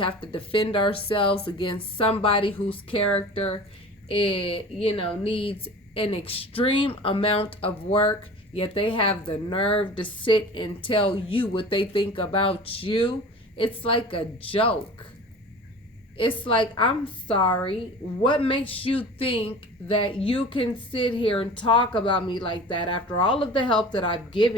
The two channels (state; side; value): normal; both; correlation 0.39